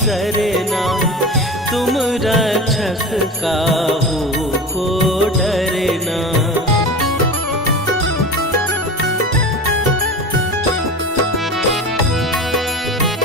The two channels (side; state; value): both; normal; correlation 0.31